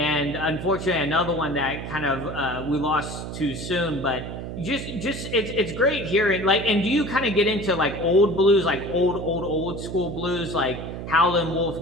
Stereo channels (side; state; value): right; noise; hum, 8 dB below the sound